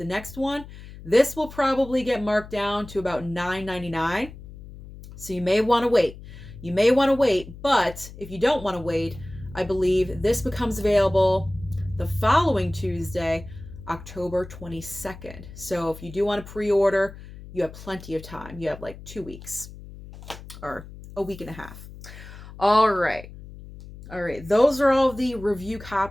next one, this will probably get marked down to about $9.99. So you may want to wait. You may want to wait, but if you don't want to wait, I believe this becomes available the following Tuesday, October 22nd. So if you do want to pre-order, you have plenty of time. You have like 2 weeks or a week and a half. All right. Those are all of the review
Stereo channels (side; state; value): left; noise; hum, 16 dB below the sound